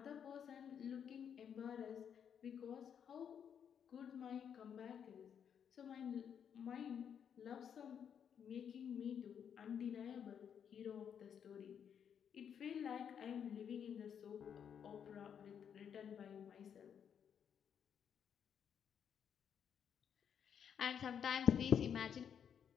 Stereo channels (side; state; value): right; quieter; 8.1 dB